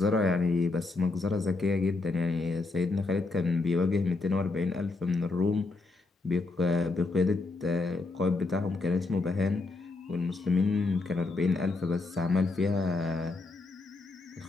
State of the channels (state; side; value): quieter; right; 3.5 dB